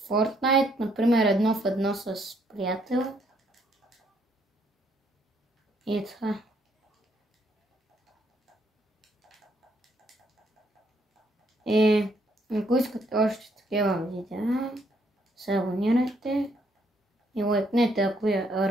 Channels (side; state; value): both; normal; correlation 0.70